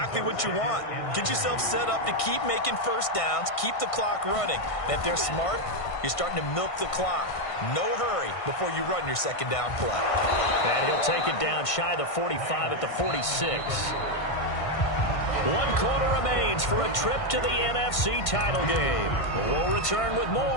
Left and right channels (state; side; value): late; right; 1.5 ms